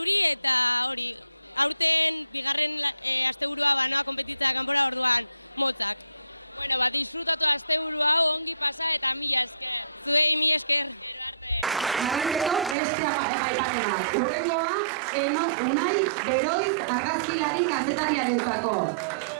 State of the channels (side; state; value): left; drops out; at 12.8 s